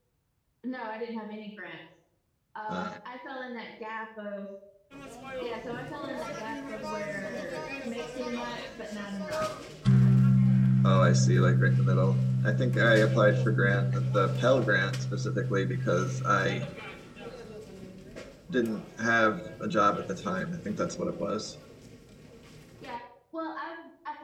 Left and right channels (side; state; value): both; identical; correlation 1.00